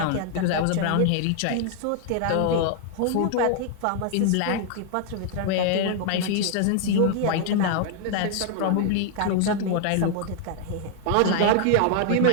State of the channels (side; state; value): both; different; correlation 0.00